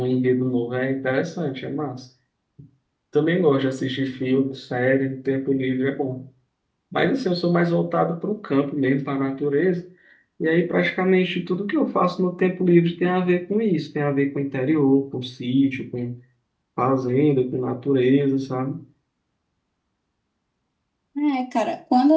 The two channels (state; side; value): identical; both; correlation 1.00